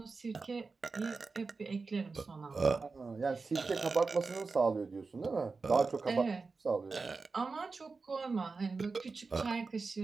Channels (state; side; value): quieter; left; 4.2 dB